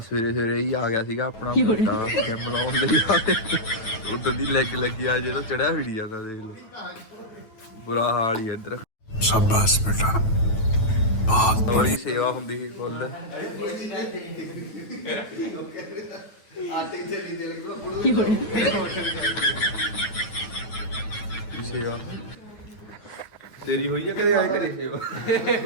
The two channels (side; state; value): right; late; 9.2 ms